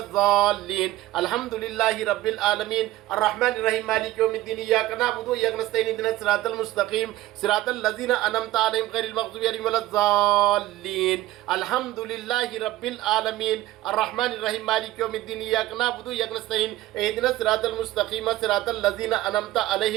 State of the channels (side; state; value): left; quieter; 16.1 dB